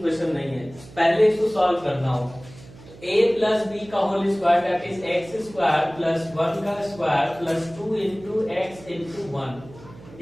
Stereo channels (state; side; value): noise; right; hum, 20 dB below the sound